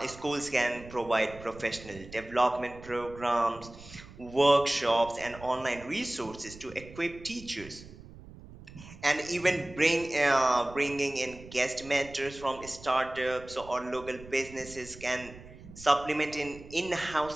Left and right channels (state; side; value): noise; right; rumble, 17 dB below the sound